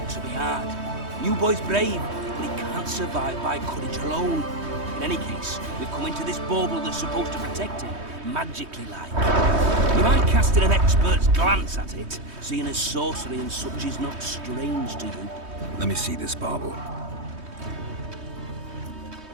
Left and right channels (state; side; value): late; left; 3.2 ms